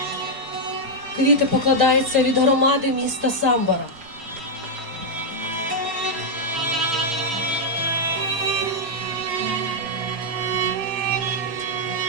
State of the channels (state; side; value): late; left; 6.2 ms